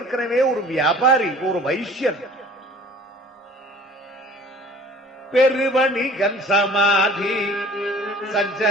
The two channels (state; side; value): normal; both; correlation 0.48